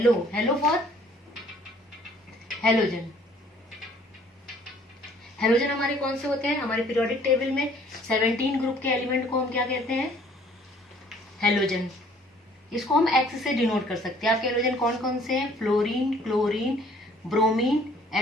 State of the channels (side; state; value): both; normal; correlation 0.58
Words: Hello for halogen. Halogen हमारे कौन से होते हैं? हमारे पीरियोडिक टेबल में 17 ग्रुप के एलिमेंट को हम क्या कहते हैं? हेलोजन। इसको हम एक्स से डिनोट कर सकते हैं। आपके हेलोजन कौन कौन से हैं? Fluorine, chlorine, bromine